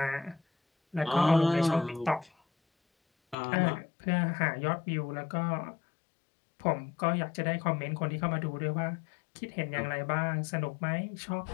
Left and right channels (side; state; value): right; drops out; at 3.4 s